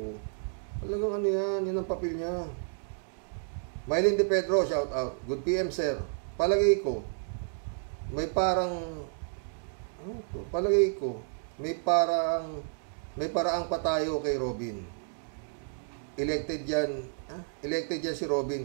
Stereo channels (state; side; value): silent; left; digital silence